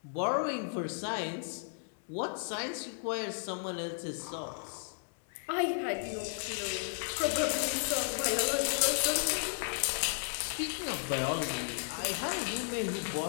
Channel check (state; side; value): silent; right; digital silence